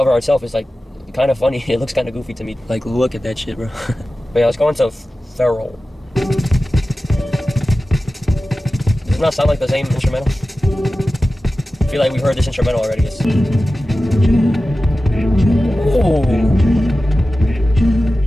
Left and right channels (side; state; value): both; normal; correlation 0.95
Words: art itself is, like, kind of funny. It looks kind of goofy to me. Like, look at that shit, bro. But yeah, let's go into Feral. Does it not sound like the same instrumental? I feel like we've heard this instrumental already. Oh,